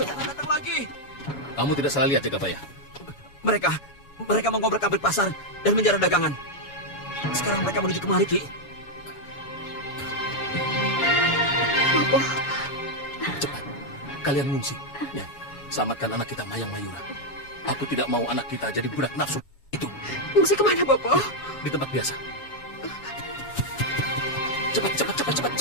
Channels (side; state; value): right; late; 7.1 ms